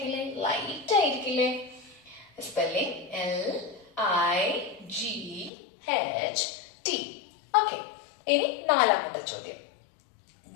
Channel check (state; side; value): drops out; right; at 5.5 s